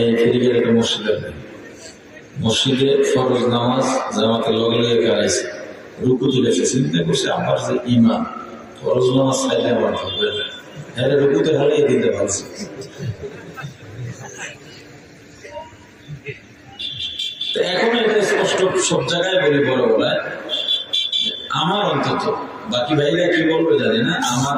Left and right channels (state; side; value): identical; both; correlation 1.00